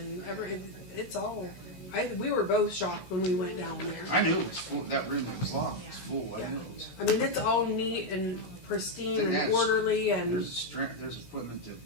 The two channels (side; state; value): right; late; 16 ms